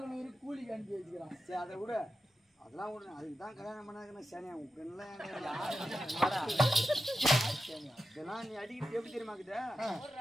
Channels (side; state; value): both; normal; correlation 0.90